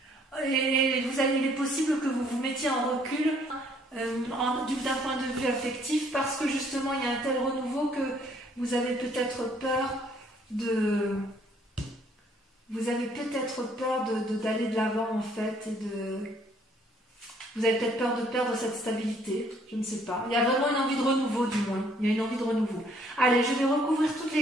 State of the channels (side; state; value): both; normal; correlation 0.63